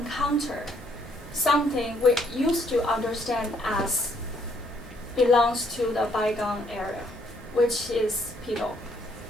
something we used to understand as belongs to the bygone era, which is Pidouhui.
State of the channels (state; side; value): normal; both; correlation 0.68